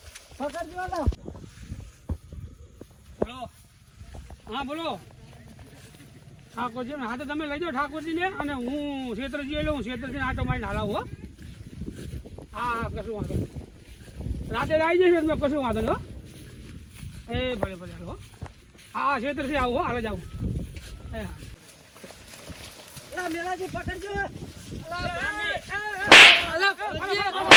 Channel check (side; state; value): both; identical; correlation 1.00